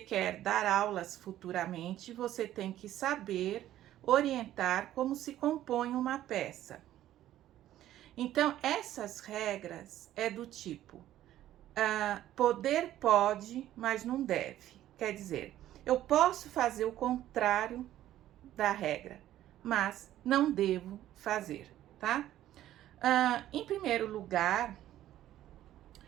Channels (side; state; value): left; quieter; 13.0 dB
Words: dar aulas futuramente, você tem que saber orientar como se compõe uma peça. Então, essas regras é do tipo, poder pode, mas não deve. Quer dizer, eu posso fazer o contrário da regra, mas não devo fazer, tá? Em primeiro lugar,